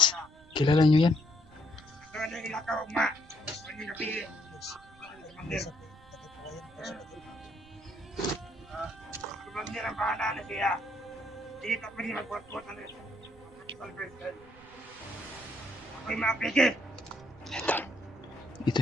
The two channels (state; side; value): noise; right; rumble, 24 dB below the sound